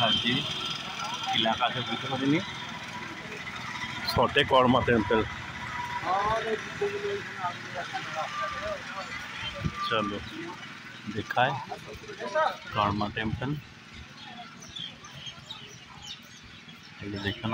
এলাকা আছে বুঝতে পারিনি। শর্টে কর্মা টেম্পল। চলো दिखाए कर्मा टेम्पल ये देखे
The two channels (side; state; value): both; identical; correlation 1.00